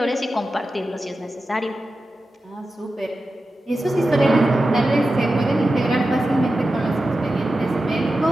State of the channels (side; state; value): both; normal; correlation 0.92